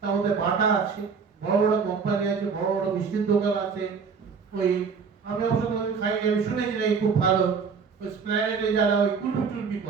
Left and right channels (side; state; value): left; quieter; 5.7 dB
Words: তার মধ্যে বাটা আছে, বড় বড় কোম্পানি আছে, বড় বড় মিষ্টির দোকান আছে। ওই আমি অবশ্য খাইনি, আমি শুনেছি না খুব ভালো। ওই স্প্ল্যানেটে যারা ওই কুলপি টুলপি